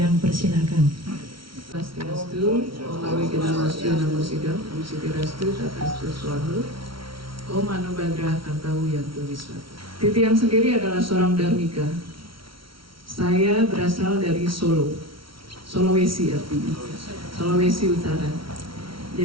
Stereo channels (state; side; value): late; left; 0.74 ms